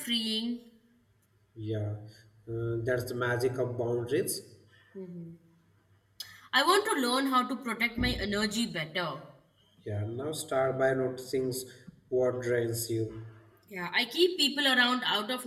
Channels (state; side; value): identical; both; correlation 1.00